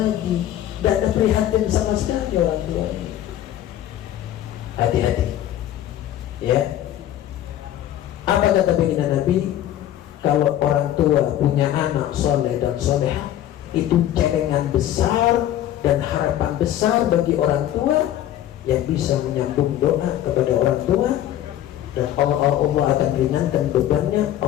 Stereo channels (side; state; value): right; quieter; 12.2 dB